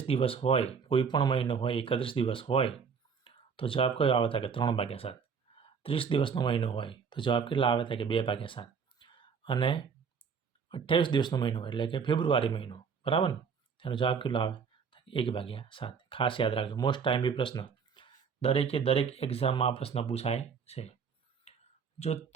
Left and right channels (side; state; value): left; quieter; 6.1 dB